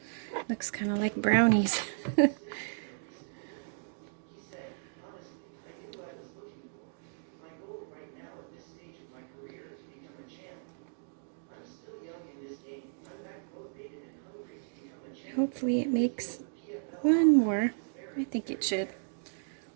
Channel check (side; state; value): left; silent; digital silence